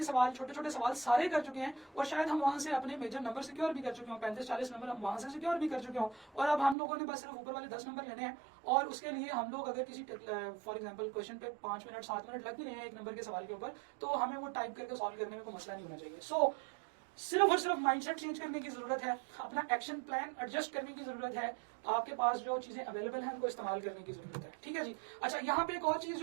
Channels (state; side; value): drops out; left; at 6.8 s